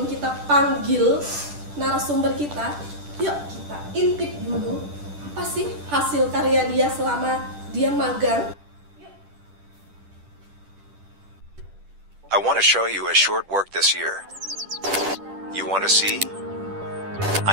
kita panggil narasumber kita, yuk kita intip dulu apa sih hasil karya dia selama dia magang. I want to show you a short work this year. You want to see?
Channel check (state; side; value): late; left; 10 ms